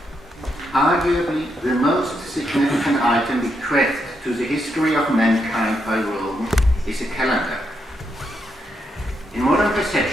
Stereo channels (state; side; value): normal; both; correlation 0.80